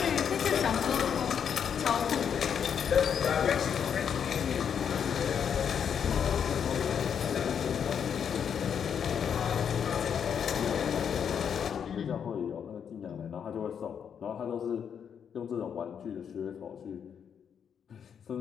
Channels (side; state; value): right; quieter; 7.7 dB